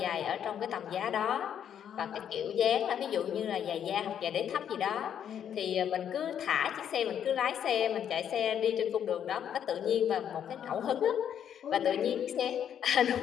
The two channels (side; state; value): right; quieter; 9.1 dB